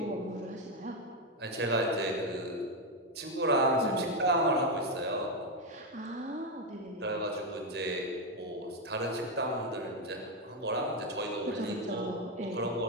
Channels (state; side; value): normal; both; correlation 0.06